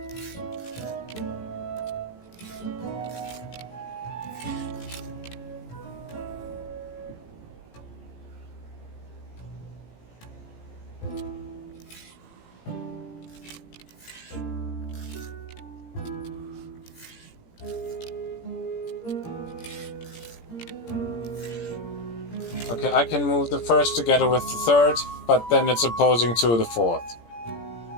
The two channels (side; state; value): right; late; 17 ms